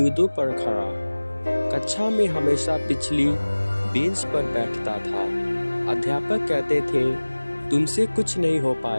पर खड़ा। कक्षा में हमेशा पिछली बेंच पर बैठता था। अध्यापक कहते थे, तुमसे कुछ नहीं हो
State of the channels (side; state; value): both; inverted; correlation -1.00